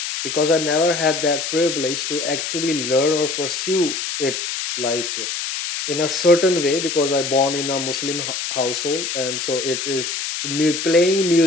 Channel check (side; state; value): left; noise; hiss, 4 dB below the sound